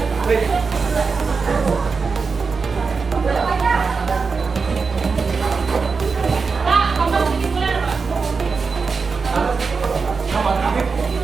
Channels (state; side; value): quieter; left; 4.8 dB